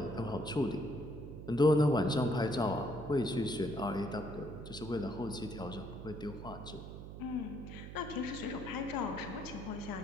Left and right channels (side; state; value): right; noise; hum, 10 dB below the sound